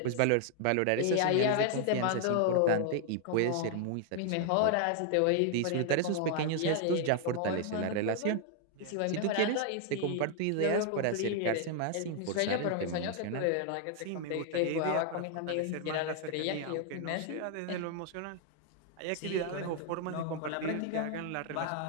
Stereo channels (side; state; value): both; different; correlation 0.00